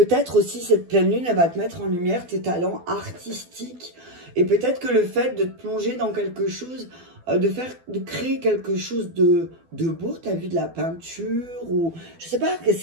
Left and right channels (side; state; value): left; late; 12 ms